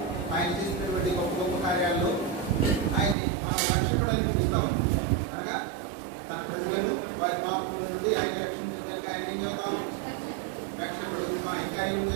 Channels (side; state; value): left; drops out; at 3.2 s